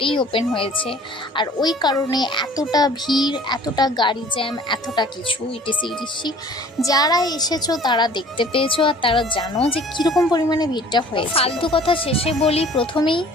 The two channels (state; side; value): normal; both; correlation 0.50